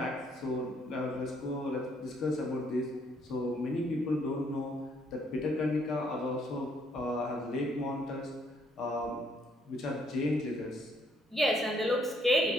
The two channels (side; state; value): both; normal; correlation 0.68